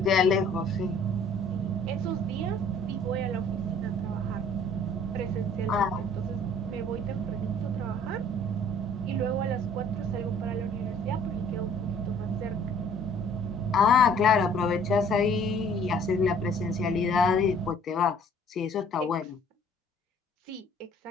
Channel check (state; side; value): normal; both; correlation 0.55